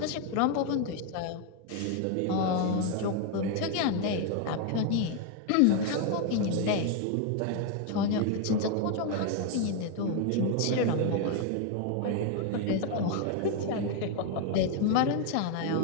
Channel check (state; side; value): different; both; correlation 0.01